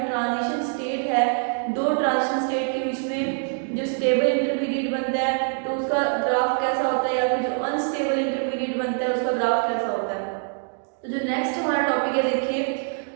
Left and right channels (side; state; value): left; silent; 59 dB below the other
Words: ट्रांजिशन स्टेट है, दो ट्रांजिशन स्टेट के बीच में जो स्टेबल इंटरमीडिएट बनता है तो उसका ग्राफ कैसा होता है, या फिर जो अनस्टेबल इंटरमीडिएट बनता है उसका ग्राफ कैसा होता है। तो जो नेक्स्ट हमारा टॉपिक है देखिए,